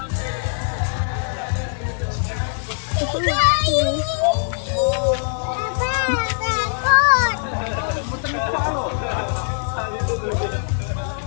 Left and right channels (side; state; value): right; silent; digital silence